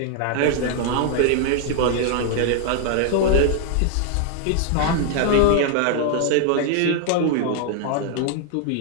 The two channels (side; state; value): both; different; correlation 0.00